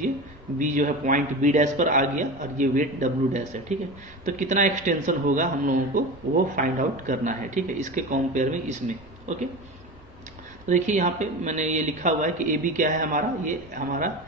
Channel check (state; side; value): normal; both; correlation 0.28